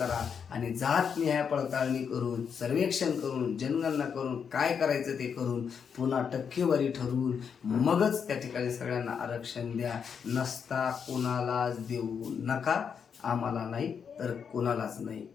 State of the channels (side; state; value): right; quieter; 6.9 dB